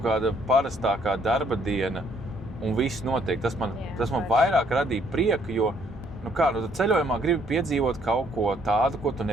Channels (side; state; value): both; normal; correlation 0.66